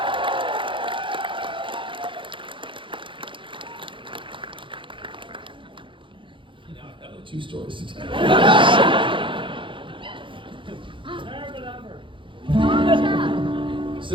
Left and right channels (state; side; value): late; left; 0.24 ms